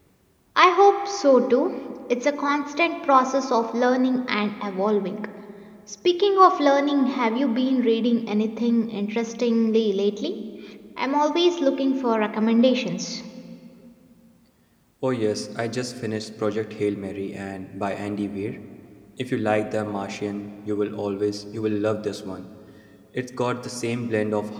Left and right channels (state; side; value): identical; both; correlation 1.00